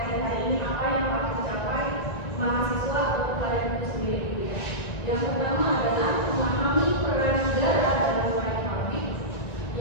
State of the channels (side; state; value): right; late; 1.9 ms